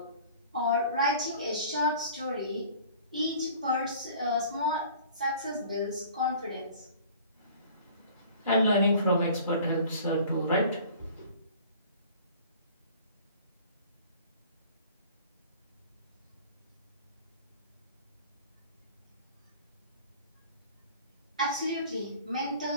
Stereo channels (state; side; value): inverted; both; correlation -0.47